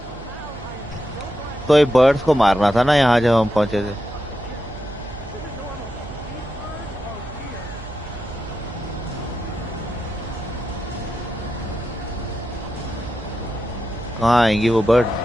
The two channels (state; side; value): noise; right; hum, 14 dB below the sound